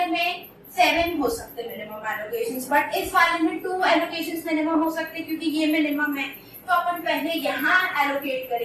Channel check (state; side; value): identical; both; correlation 1.00